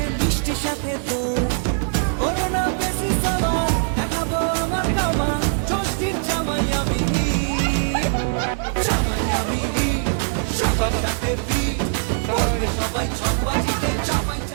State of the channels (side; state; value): left; silent; 64 dB below the other